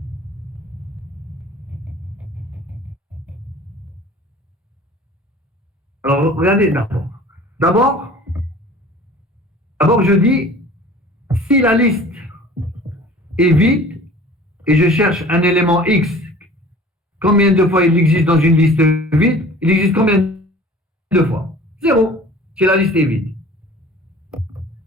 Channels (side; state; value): both; normal; correlation 0.45